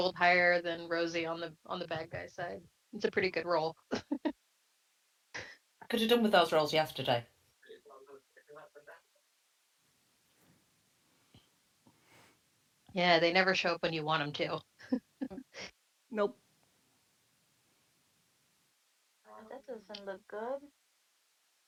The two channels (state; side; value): identical; both; correlation 1.00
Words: higher than Rosie on the bad guy side. It's a pretty good roll. I could have done with those rolls yesterday. Yeah, they never show up when you want them to. Nope. That doesn't look good.